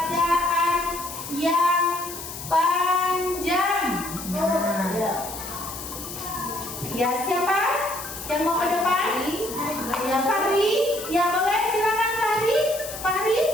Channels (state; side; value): noise; left; hiss, 10 dB below the sound